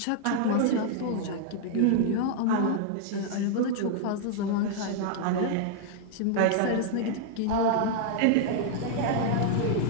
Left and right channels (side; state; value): both; different; correlation -0.01